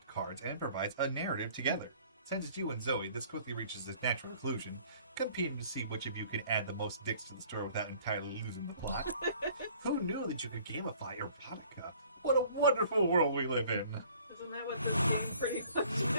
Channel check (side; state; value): both; inverted; correlation -0.54